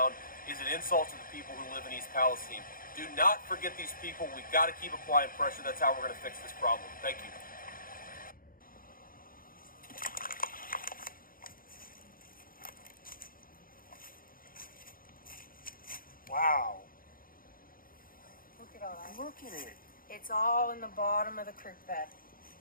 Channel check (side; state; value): right; late; 0.41 ms